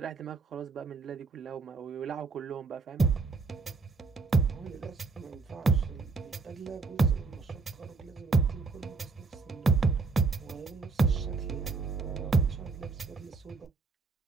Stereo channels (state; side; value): quieter; left; 4.4 dB